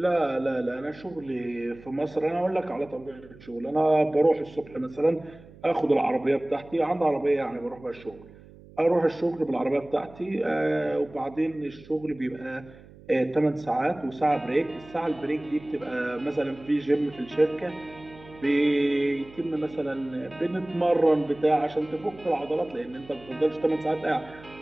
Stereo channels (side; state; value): right; noise; hum, 21 dB below the sound